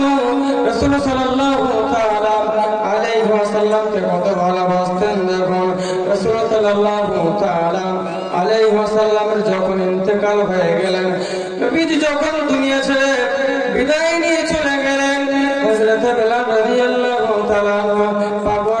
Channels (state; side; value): identical; both; correlation 1.00